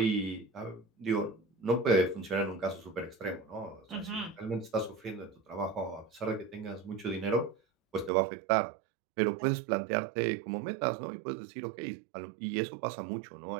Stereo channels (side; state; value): left; drops out; at 8.1 s